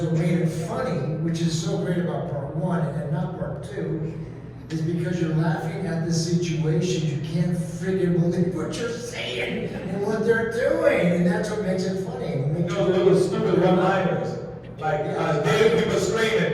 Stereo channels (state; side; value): identical; both; correlation 1.00